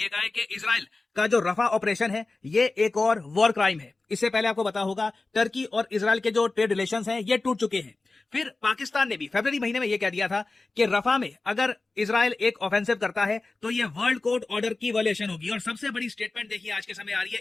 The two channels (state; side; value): quieter; right; 3.4 dB